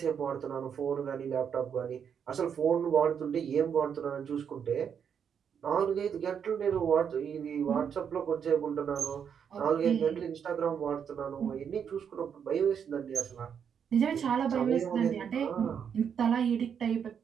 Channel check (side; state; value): left; quieter; 7.6 dB